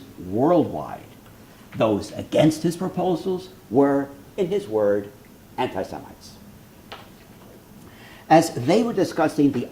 worldwide. Those against his proposals were, in his word, anti-Semites. As they were discussing the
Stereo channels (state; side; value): identical; both; correlation 1.00